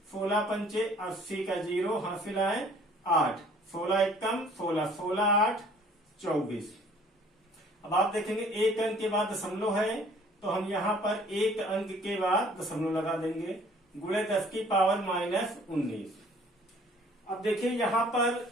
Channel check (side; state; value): both; normal; correlation 0.55